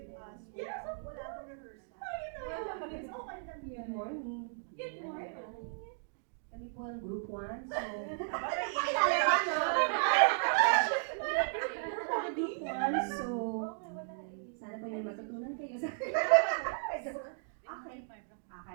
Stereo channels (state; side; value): silent; left; digital silence